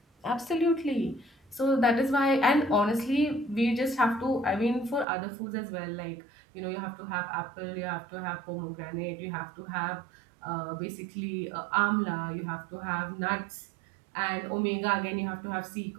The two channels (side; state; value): left; drops out; at 5.1 s